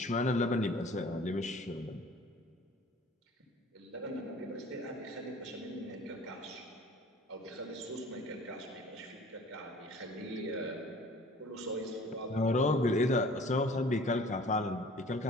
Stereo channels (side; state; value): both; normal; correlation 0.48